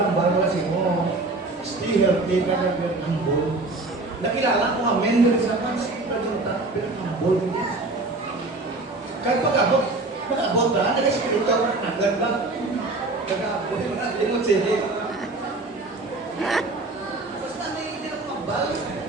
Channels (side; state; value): left; quieter; 3.2 dB